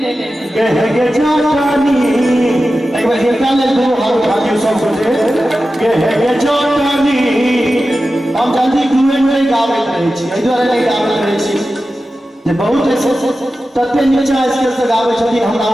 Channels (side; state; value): both; normal; correlation 0.93